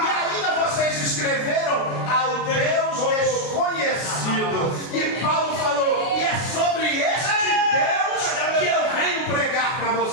ainda vocês escreveram ao Deus desconhecido. E Paulo falou: e é sobre este Deus que eu venho pregar para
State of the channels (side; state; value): right; late; 33 ms